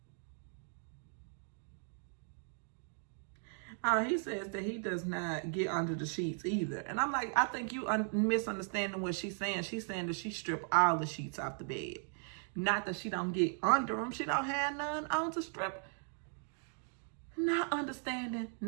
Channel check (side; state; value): left; silent; 53 dB below the other